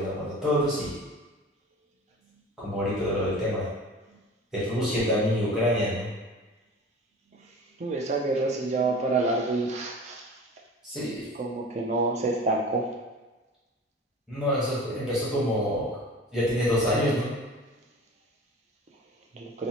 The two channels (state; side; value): normal; both; correlation 0.39